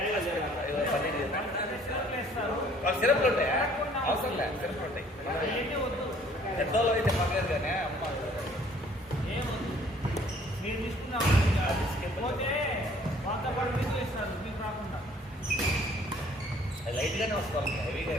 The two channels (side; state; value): both; normal; correlation 0.58